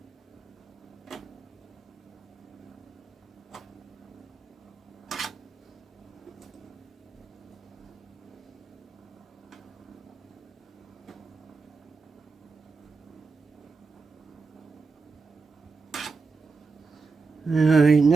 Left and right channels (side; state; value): left; quieter; 4.5 dB